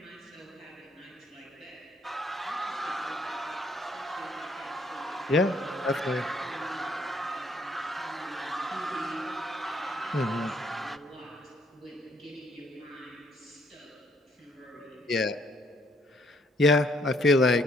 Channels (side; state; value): both; normal; correlation 0.67